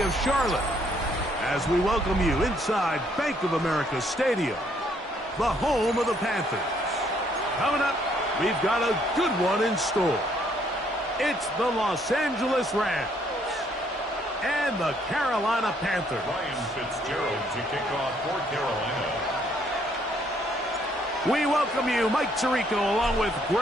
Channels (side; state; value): both; normal; correlation 0.68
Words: of Charlotte as we welcome you inside Bank of America Stadium, the home of the Panthers. Coming up, we've got a good one in store. It's the Los Angeles Rams and the Carolina Panthers. Ryan Fitzgerald to kick off for Carolina. We welcome you, Mike Tirico, along with